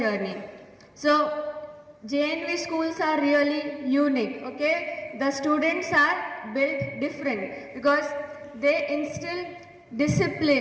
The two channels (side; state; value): both; identical; correlation 1.00